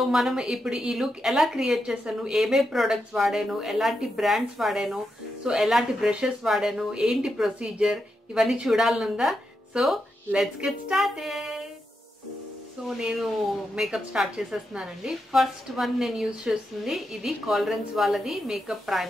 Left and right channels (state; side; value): normal; both; correlation 0.85